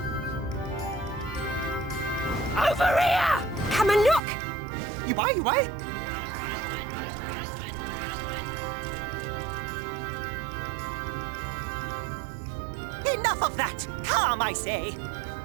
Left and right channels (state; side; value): drops out; left; at 4.2 s